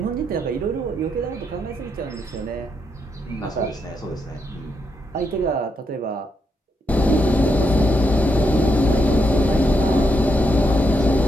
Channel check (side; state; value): both; normal; correlation 0.80